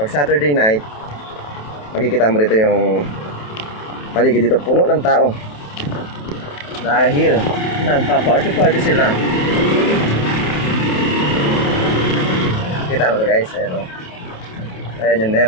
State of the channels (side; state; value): right; late; 28 ms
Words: Saturday night, makikita mo dito yung paligid dito, puno ng tao. Dahil nagpa-party sila. Kita mo to guys, ayan o. Ayan yung